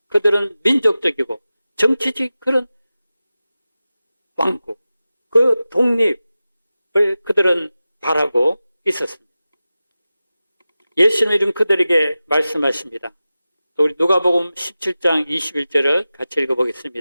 그들은 민족적이고 정치적 그런 왕국, 그 독립을 그들은 바라고 있었습니다. 예수님은 그들에게 말씀하십니다. 우리 누가복음 17장 21절을 같이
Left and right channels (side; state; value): both; inverted; correlation -0.95